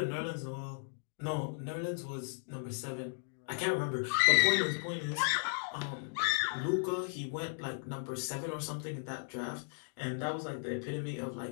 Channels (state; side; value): silent; right; digital silence